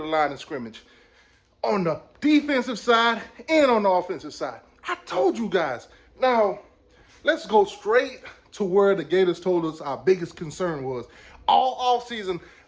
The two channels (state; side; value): identical; both; correlation 1.00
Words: line of scrimmage on the defensive side and on the offensive side. I told you guys. Now, let's go straight to where the Gators told us our biggest concern was. All offseason,